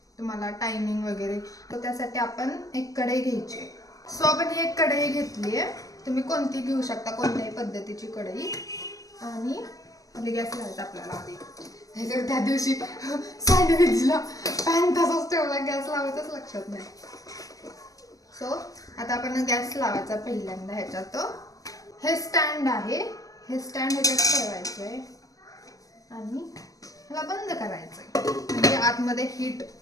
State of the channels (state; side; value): late; right; 0.17 ms